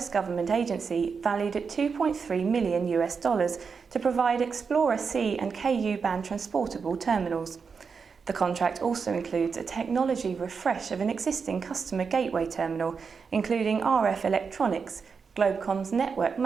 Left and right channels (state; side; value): quieter; left; 5.6 dB